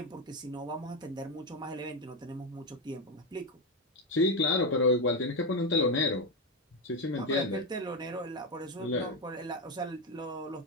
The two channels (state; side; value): normal; both; correlation 0.10